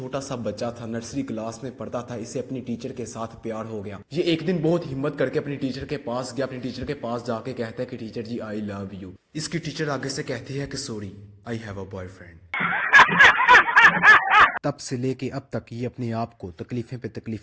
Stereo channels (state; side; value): identical; both; correlation 1.00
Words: सा बच्चा था, नर्सरी क्लास में पढ़ता था, इसे अपनी टीचर के साथ प्यार हो गया। ये एक दिन बहुत हिम्मत करके अपनी टीचर के पास गया, अपनी टीचर के पास जाके कहता है कि टीचर जी आई लव यू। इसकी टीचर आगे से कहती है कि sorry I have a boyfriend. तब से लेके अब तक ये अपने आप को तकलीफें पे